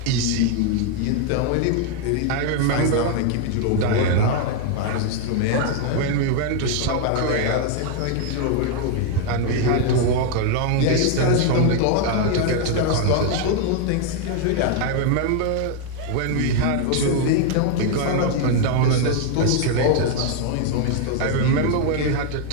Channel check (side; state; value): both; different; correlation 0.00